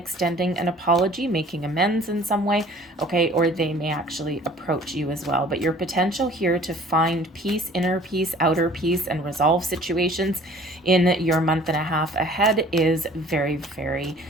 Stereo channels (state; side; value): normal; both; correlation 0.51